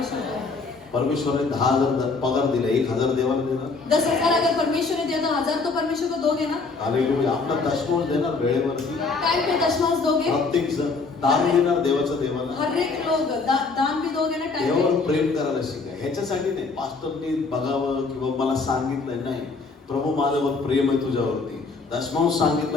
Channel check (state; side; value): quieter; right; 4.1 dB